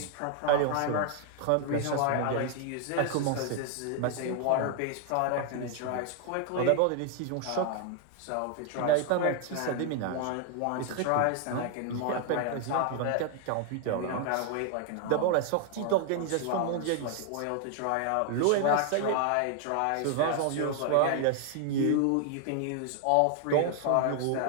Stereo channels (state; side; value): different; both; correlation 0.00